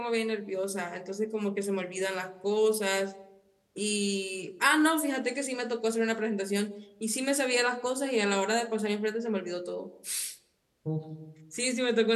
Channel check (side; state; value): both; identical; correlation 1.00